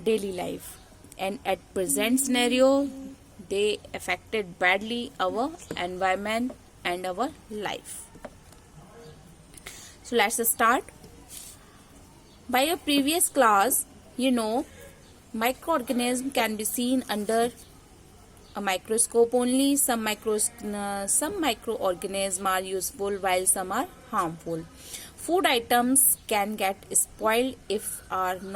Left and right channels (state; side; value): identical; both; correlation 1.00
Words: daily life, and at present scenario, they affected badly our environment and our life. So let's start. By a previous class, microorganism can be seen under a microscope only. Some microorganisms are useful while some are harmful. Food items can get spoiled if are